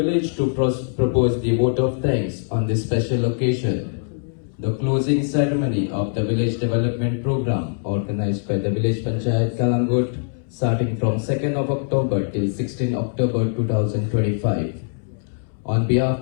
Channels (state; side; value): silent; right; 64 dB below the other